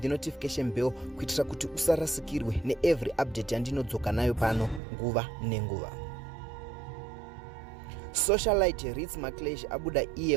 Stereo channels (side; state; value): left; drops out; at 4.8 s